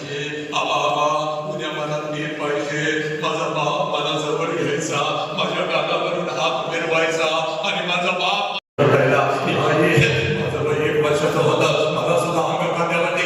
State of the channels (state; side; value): identical; both; correlation 1.00